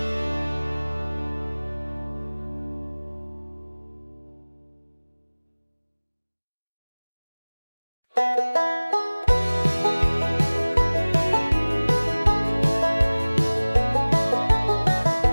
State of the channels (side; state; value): both; inverted; correlation -1.00